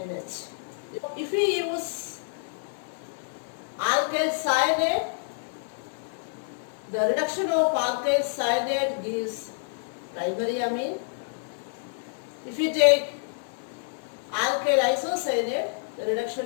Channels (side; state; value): right; silent; digital silence